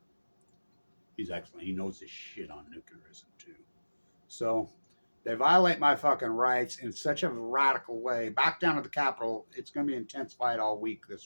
He's excellent. He knows his shit on nuclearism, too. So, they violate my fucking rights in such a radical way. Back down to the Capitol. It's going to be an intense fight all week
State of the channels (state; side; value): inverted; both; correlation -1.00